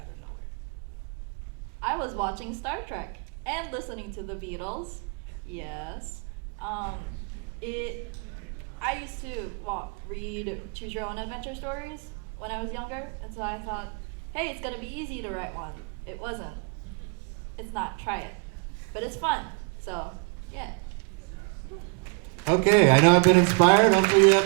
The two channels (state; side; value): quieter; left; 36.9 dB